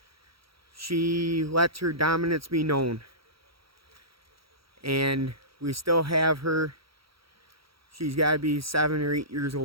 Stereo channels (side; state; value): left; late; 0.75 ms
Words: She lets her dominance be known, and we still have her. She's got to be 7 or 8 years